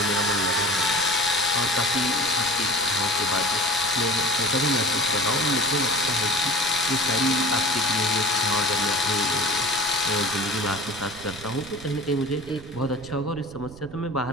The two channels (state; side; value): noise; right; rumble, 18 dB below the sound